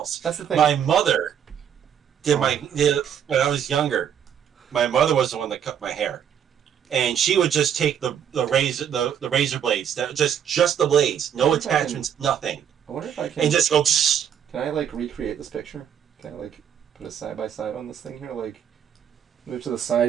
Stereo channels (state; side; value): quieter; left; 8.8 dB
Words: That's the thing. My mother did when I was younger. My mother was the one that cut my hair, and she would just take the razor blades, just the blades, no attachments, nothing. I wonder if I can. And just go. Can I like recreate this picture? Can I like put a side by side on this thing here? Like move to the